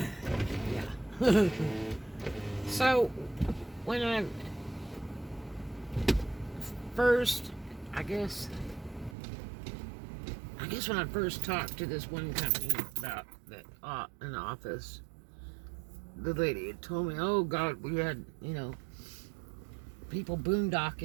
Yeah. So when I first, I guess when I first talked to this one company about that an office, the lady had told me, "Oh God, we had people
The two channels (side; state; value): left; drops out; at 9.2 s